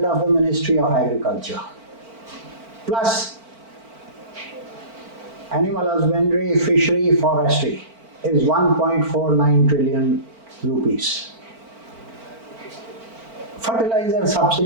of the Ministry of Agriculture, plus animal husbandry, fishery, forestry, is 1.49 trillion rupees. Fertilizer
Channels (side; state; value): left; late; 4.4 ms